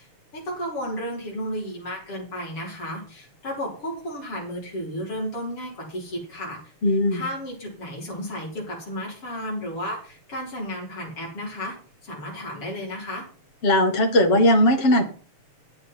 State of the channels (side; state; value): right; late; 7.2 ms